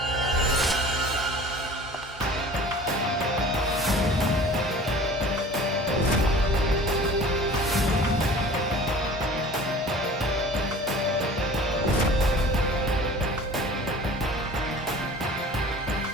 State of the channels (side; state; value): both; normal; correlation 0.44